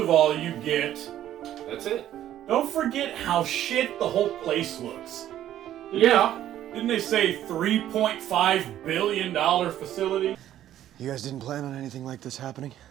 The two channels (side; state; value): left; quieter; 12.1 dB